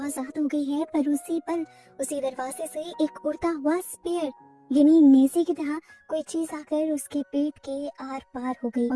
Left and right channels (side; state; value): both; identical; correlation 1.00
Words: हो गई है, पर उसी पल उसी दरवाजे से एक उड़ता हुआ स्पेयर यानी नेज़ी की तरह कोई चीज आकर उसके पेट के आर पार हो गई